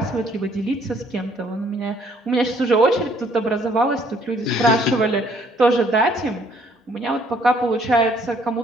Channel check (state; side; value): normal; both; correlation 0.63